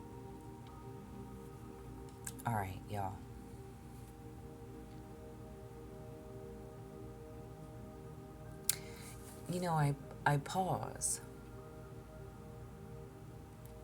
All right, y'all. You know, I pause.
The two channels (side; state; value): both; identical; correlation 1.00